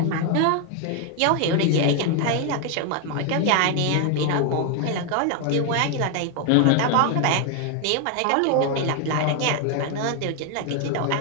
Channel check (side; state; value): both; different; correlation 0.01